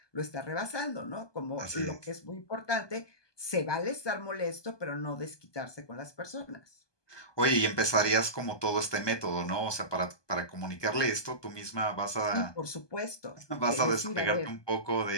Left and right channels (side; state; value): right; late; 1.2 ms